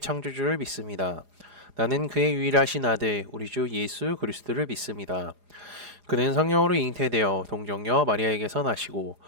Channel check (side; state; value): left; late; 4.9 ms